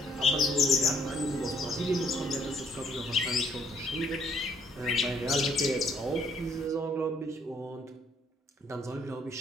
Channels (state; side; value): normal; both; correlation 0.66